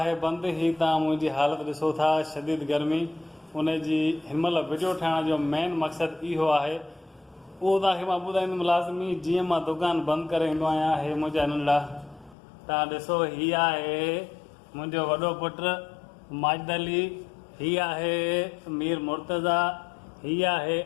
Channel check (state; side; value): drops out; right; at 12.4 s